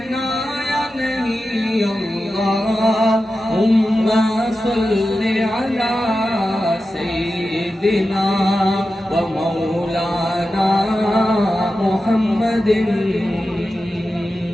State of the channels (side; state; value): both; normal; correlation 0.92